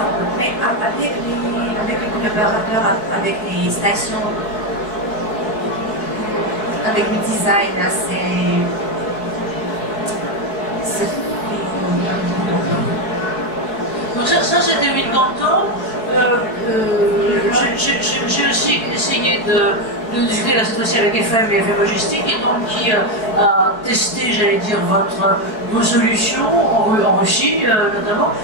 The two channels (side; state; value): right; late; 4.6 ms